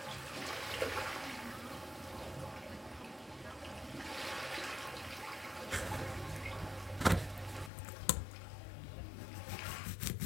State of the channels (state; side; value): drops out; right; at 7.7 s